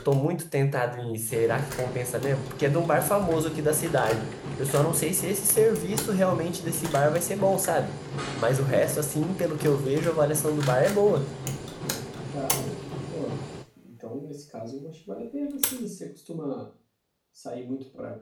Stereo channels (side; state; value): both; identical; correlation 1.00